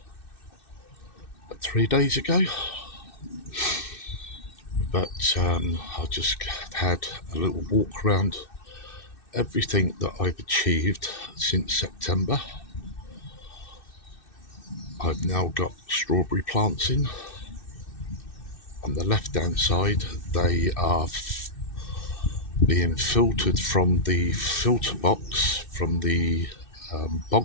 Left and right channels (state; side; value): late; right; 2.6 ms